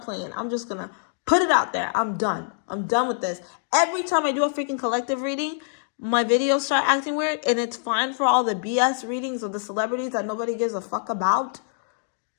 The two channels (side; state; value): right; silent; digital silence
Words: playing. I'm just going to put it out there. I'm done. I'm done with this. Every time I do a freaking collective reading, my videos start acting weird, and it's fine for all the BS readings of the celebrities that nobody gives a fuck about.